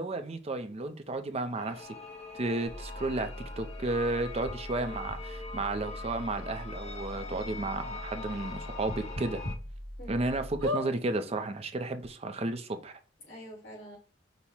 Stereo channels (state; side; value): normal; both; correlation 0.41